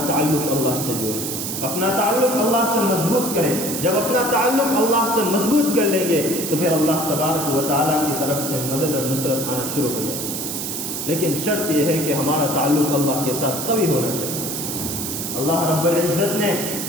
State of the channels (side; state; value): right; noise; hiss, 4 dB below the sound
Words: تعلق اللہ سے جوڑیں، اپنا تعلق اللہ سے مضبوط کریں۔ جب اپنا تعلق اللہ سے مضبوط کر لیں گے تو پھر اللہ تبارک و تعالیٰ کی طرف سے مدد اور نصرت آنا شروع ہو جائے گی۔ لیکن شرط یہ ہے کہ ہمارا تعلق اللہ کے ساتھ قوی ہونا چاہیے۔ اللہ رب العزت نے